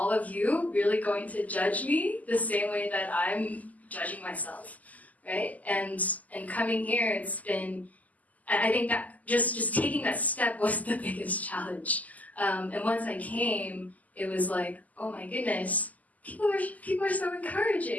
of you really going to judge me the same way that I'm judging myself, right? And coming here, it's been, I think that just taking that step was the biggest challenge. And once I came, it was oh my goodness, people are so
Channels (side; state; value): right; late; 0.077 ms